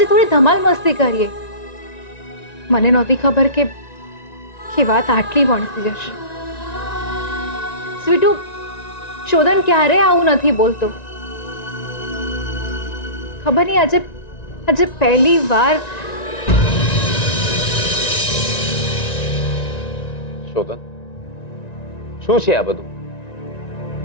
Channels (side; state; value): right; late; 1.9 ms